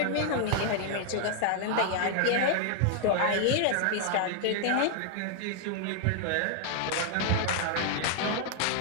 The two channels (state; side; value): different; both; correlation 0.00